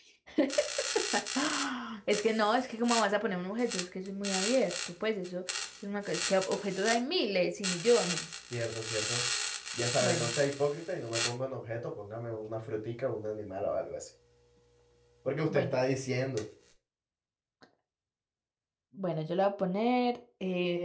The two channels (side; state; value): both; identical; correlation 1.00